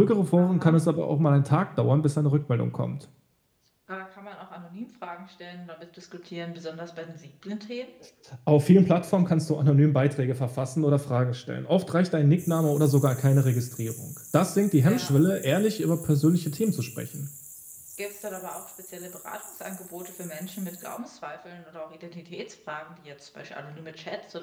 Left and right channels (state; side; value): identical; both; correlation 1.00